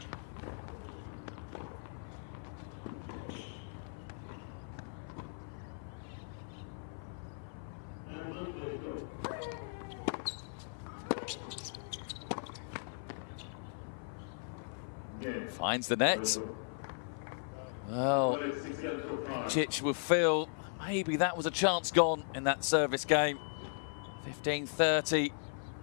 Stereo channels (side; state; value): right; silent; 53 dB below the other